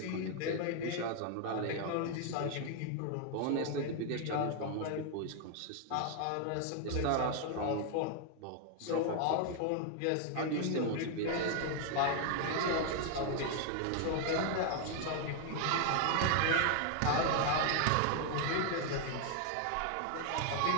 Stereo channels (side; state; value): both; different; correlation 0.00